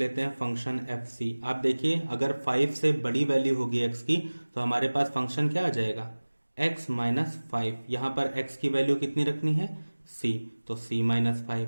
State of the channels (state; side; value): inverted; both; correlation -1.00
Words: हैं फंक्शन एफ सी। आप देखिए अगर 5 से बड़ी वैल्यू होगी x की तो हमारे पास फंक्शन क्या आ जाएगा, x माइनस 5। यहां पर x की वैल्यू कितनी रखनी है, c, तो c माइनस 5।